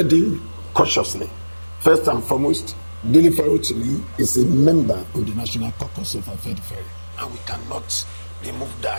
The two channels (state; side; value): inverted; both; correlation -1.00